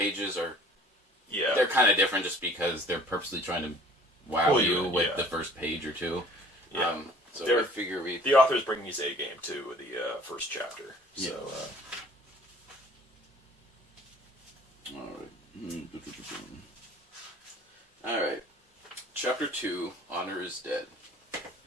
are... They're kind of different just because they're purposely trying to wow you with the first page or two. So I figure the author's bringing his A game to the first chapter. So, Alright. Chapter 2, Honor is Dead.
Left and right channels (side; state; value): both; normal; correlation 0.52